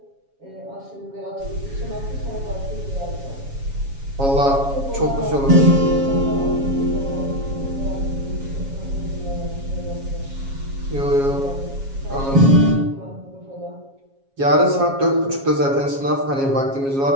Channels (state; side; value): late; left; 7.3 ms